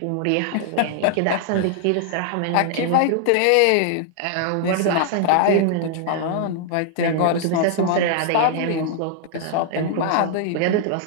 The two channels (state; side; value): different; both; correlation -0.01